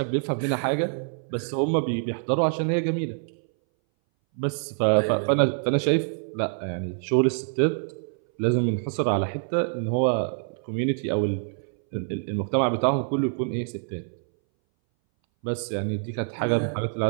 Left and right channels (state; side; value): silent; left; 60 dB below the other